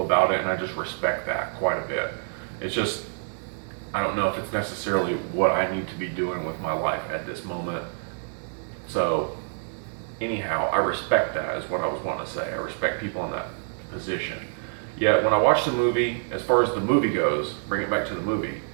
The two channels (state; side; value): silent; left; digital silence